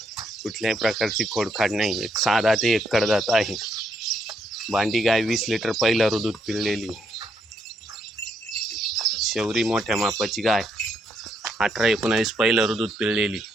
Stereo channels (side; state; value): both; normal; correlation 0.75